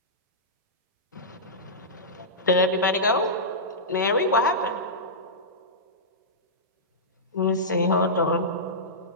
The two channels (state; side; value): normal; both; correlation -0.15